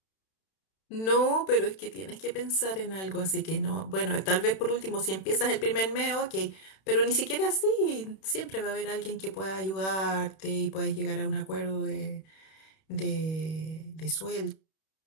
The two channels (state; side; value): late; right; 31 ms